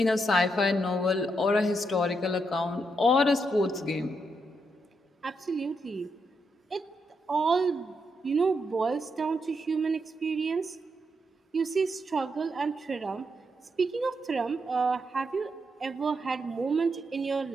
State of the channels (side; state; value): both; normal; correlation 0.81